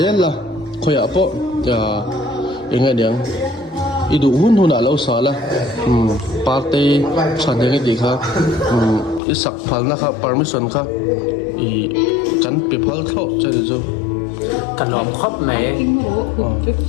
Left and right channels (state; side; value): drops out; right; at 9.2 s